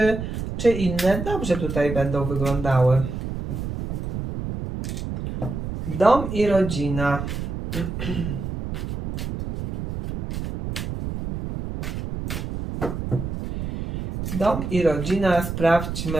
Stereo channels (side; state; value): right; noise; rumble, 5 dB below the sound